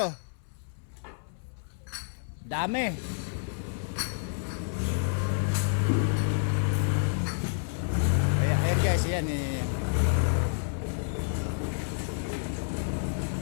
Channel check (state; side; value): silent; right; 58 dB below the other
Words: oh. Dami. Ayan guys, yan.